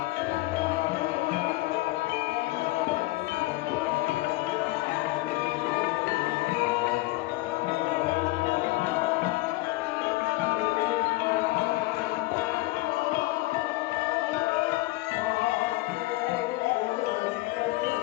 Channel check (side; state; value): right; quieter; 20.3 dB